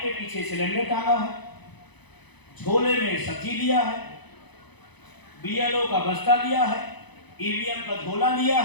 के पीछे सिलेंडर टांगा है, झोले में सब्जी लिया है, बीएलओ का बस्ता लिया है, ईवीएम का झोला लिया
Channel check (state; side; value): late; right; 0.99 ms